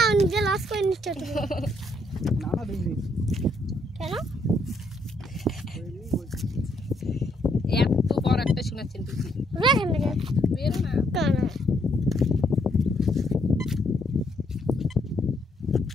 নিজে লস করে নিচ্ছ তুমি। না না দিইনি, কেন? এত বড় একটা শোনাচ্ছেন তুই, রেখে নেবে বেরো না। কেন?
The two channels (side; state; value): both; normal; correlation 0.72